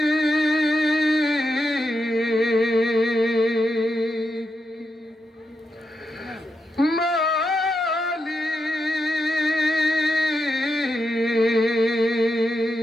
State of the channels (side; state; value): both; normal; correlation 0.85